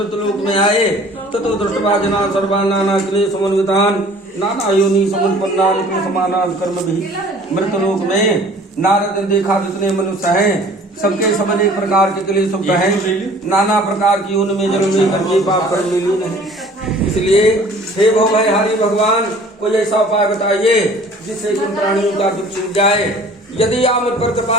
लोक में आए। ततो दृष्टवा जना सर्वा नाना क्लेश समन्वितान नाना योनि समुत्पन्नान समानान कर्म भी। मृत लोक में नारद ने देखा जितने मनुष्य हैं, सबके सब अनेक प्रकार के क्लेश हैं, नाना प्रकार की उनमें जन्म लेकर के पाप कर्म में लीन है। इसलिए हे भवभयहारी भगवान, कोई ऐसा उपाय बताइए जिससे इन प्राणियों का दुख छूट जाए। यदि आप मुझ पर कृपा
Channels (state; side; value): normal; both; correlation 0.50